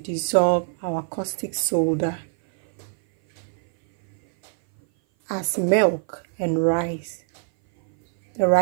our caustic soda as milk and rice, the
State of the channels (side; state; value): left; silent; 58 dB below the other